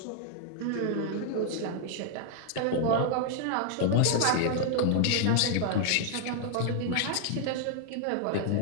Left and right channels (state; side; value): different; both; correlation -0.01